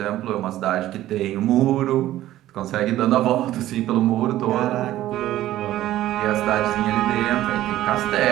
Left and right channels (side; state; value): left; quieter; 14.2 dB